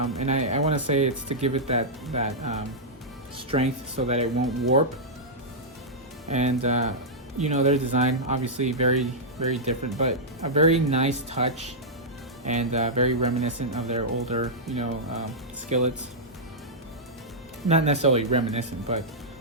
I want to say it's to give it that strength so that it won't warp. And you know, their design obviously very, very different, but a very nice touch, and very reminiscent of their older, you know, skillets. Not necessarily reminiscent, but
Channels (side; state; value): both; normal; correlation -0.09